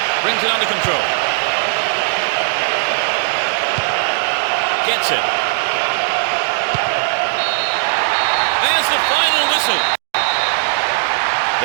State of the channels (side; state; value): left; silent; digital silence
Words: Brings it under control. Gets it. There's the final whistle.